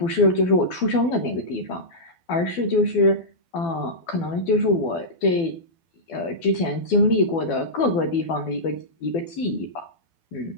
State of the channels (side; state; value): right; late; 12 ms